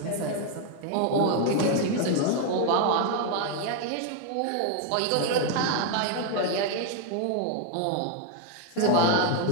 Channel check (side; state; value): both; different; correlation 0.01